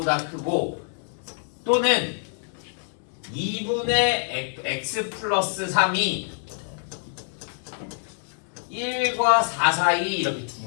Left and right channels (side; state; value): right; silent; 61 dB below the other